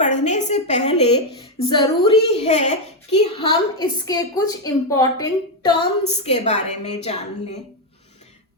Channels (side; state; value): both; normal; correlation 0.04